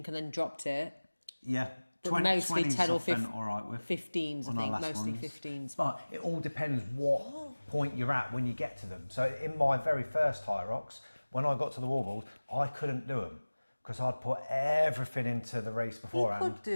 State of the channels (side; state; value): both; inverted; correlation -1.00